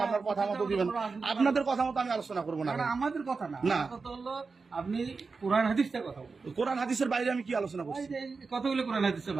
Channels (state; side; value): quieter; left; 4.5 dB